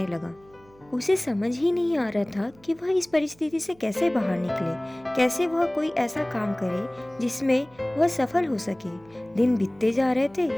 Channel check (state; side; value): noise; right; hum, 28 dB below the sound